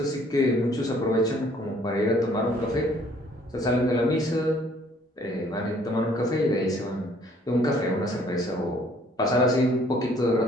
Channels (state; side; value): normal; both; correlation 0.60